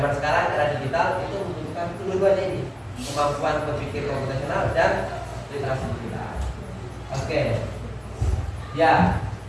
sekarang era digital itu membutuhkan kedua-duanya ini, kemampuan berpikir komputasional dan literasi digital. Oke. Ya,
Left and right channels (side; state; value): both; identical; correlation 1.00